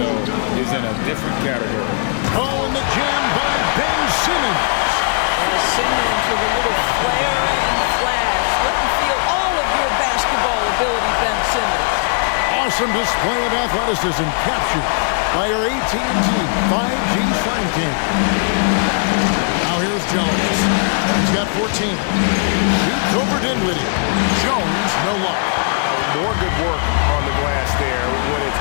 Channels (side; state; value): right; silent; 67 dB below the other